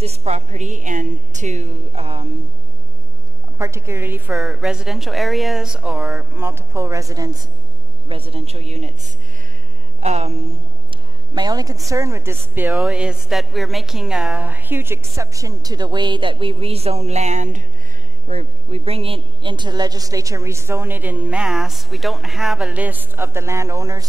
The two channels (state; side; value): noise; left; hum, 10 dB below the sound